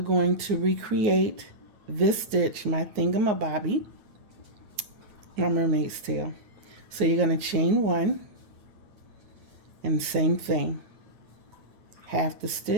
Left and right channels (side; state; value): left; late; 9.5 ms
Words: to recreate this stitch, my thingamabobby, my mermaid's tail. So you're going to chain 1 and same thing, half the